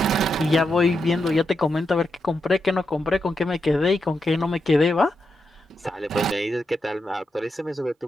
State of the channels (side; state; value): both; normal; correlation 0.85